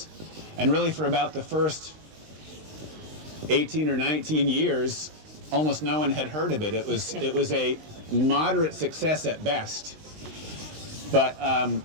and really for about the first 18 or 19 years, almost no one had heard of it. It was a moderate success at best. But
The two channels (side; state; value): left; late; 19 ms